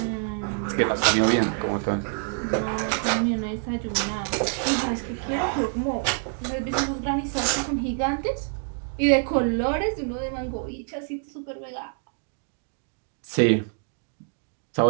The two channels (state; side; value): silent; left; 55 dB below the other